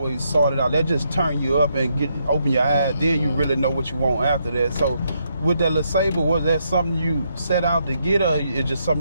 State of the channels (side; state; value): both; inverted; correlation -0.77